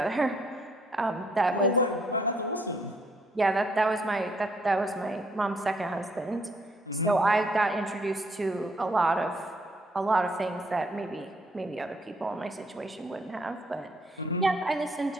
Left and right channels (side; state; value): both; normal; correlation 0.68